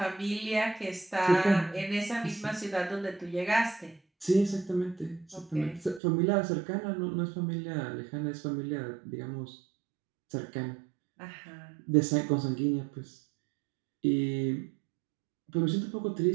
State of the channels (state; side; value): drops out; left; at 6.0 s